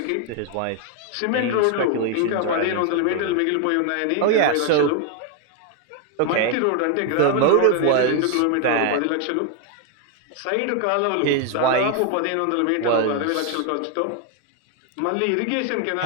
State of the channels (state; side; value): different; both; correlation 0.01